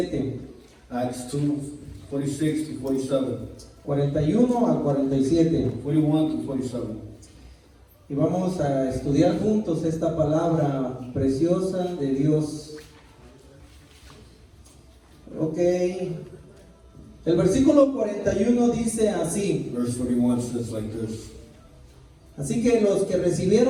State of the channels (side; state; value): both; identical; correlation 1.00